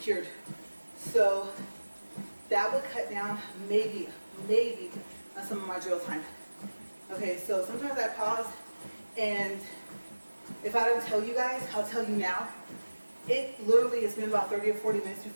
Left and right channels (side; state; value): both; inverted; correlation -1.00